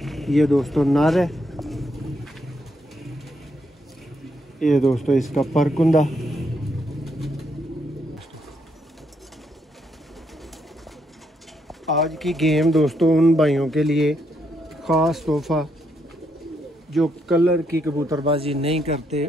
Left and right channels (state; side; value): normal; both; correlation 0.77